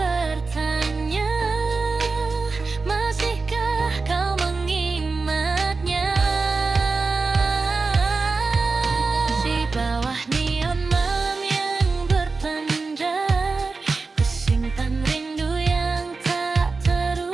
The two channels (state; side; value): quieter; left; 4.1 dB